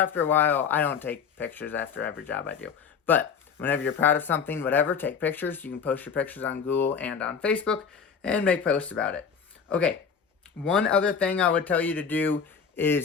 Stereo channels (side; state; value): right; quieter; 6.5 dB